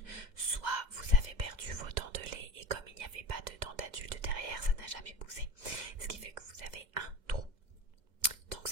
soit vous avez perdu vos dents de lait et comme il n'y avait pas de dents d'adulte derrière, ça n'a jamais poussé, ce qui fait que vous avez un trou. Donc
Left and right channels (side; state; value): left; late; 2.1 ms